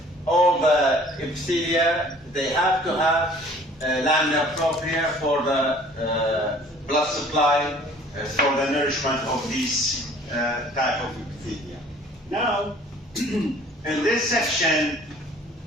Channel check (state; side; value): normal; both; correlation 0.52